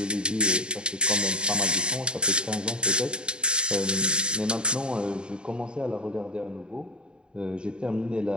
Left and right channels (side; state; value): left; late; 0.051 ms